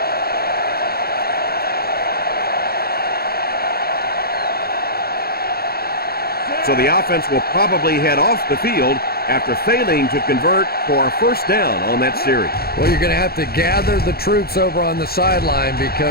So the offense will probably head off the field after failing to convert for a first down on that series. Well, you're going to have to gather the troops over on the sideline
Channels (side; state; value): right; late; 0.45 ms